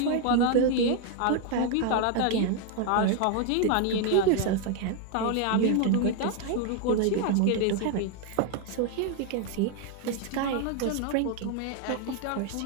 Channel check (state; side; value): different; both; correlation 0.01